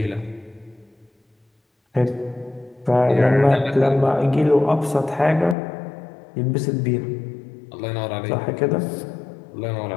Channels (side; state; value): right; drops out; at 5.6 s